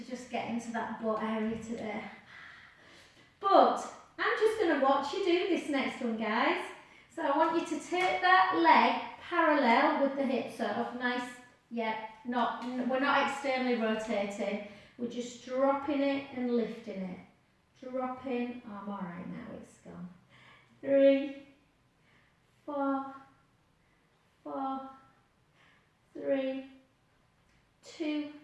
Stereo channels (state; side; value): identical; both; correlation 1.00